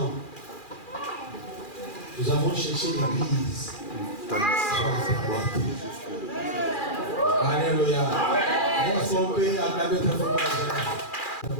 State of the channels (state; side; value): late; right; 2.4 ms